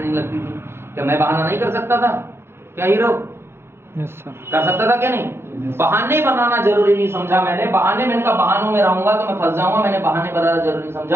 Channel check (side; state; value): left; late; 0.12 ms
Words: लगती थी, क्या मैं बहाना नहीं कर सकता था? क्या हीरो? Yes sir. कर सकता था क्या नहीं? बहाने बनाना जरूरी नहीं समझा मैंने। बहाने, मैंने कहा बहानों में रहूंगा तो मैं फंस जाऊंगा, मैंने बहाने बनाना जरूरी